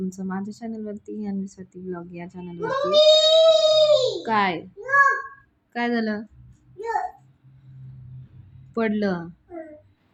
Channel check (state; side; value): identical; both; correlation 1.00